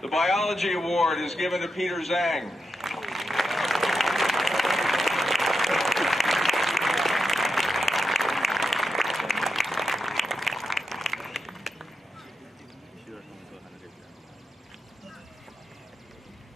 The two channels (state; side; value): normal; both; correlation 0.87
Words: Biology Award is given to Peter Zhang.